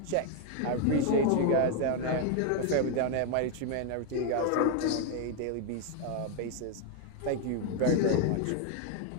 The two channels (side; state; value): both; different; correlation 0.01